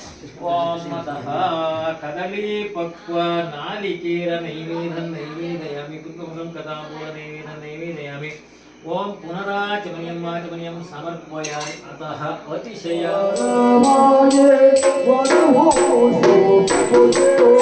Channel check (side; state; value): both; identical; correlation 1.00